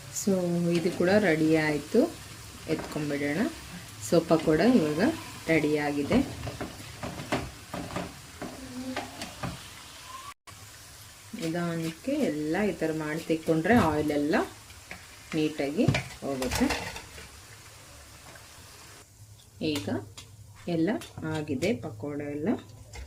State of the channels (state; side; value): identical; both; correlation 1.00